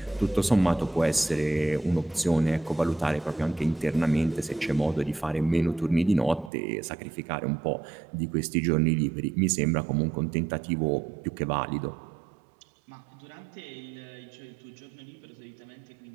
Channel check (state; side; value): drops out; left; at 6.5 s